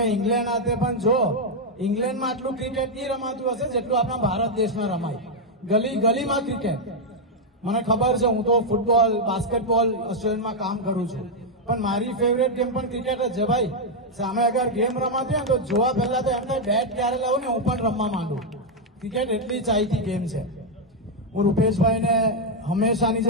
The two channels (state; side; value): normal; both; correlation 0.00